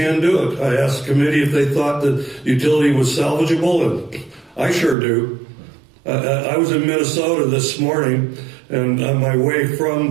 do it. I asked the committee if they thought that utility was salvageable, and I sure do. I was in Minnesota this morning, and on my way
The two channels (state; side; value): drops out; left; at 5.0 s